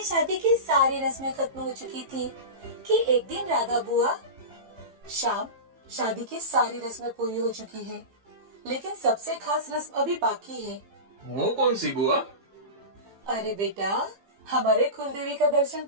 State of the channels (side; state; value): left; late; 15 ms